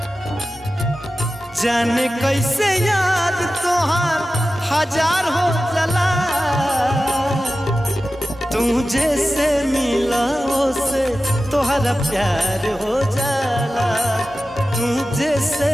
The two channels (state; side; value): normal; both; correlation 0.94